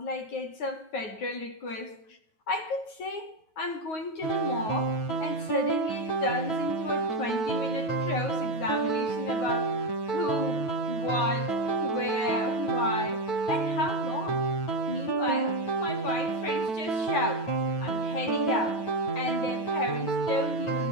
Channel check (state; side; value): late; right; 9.4 ms